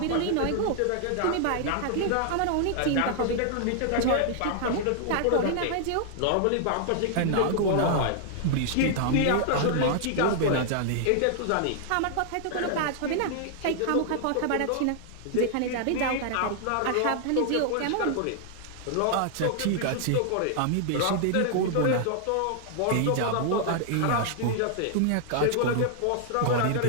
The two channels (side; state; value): both; different; correlation 0.00